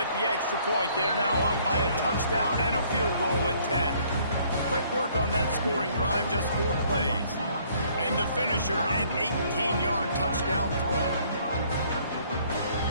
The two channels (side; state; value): both; inverted; correlation -0.61